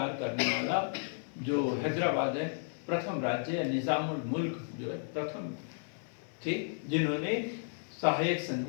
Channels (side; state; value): right; silent; digital silence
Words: करने वाला जो हैदराबाद है प्रथम राज्य है, निजाम उल मुल्क जो है प्रथम थे जिन्होंने सहायक